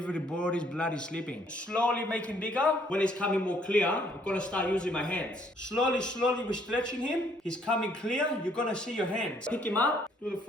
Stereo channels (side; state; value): both; normal; correlation 0.65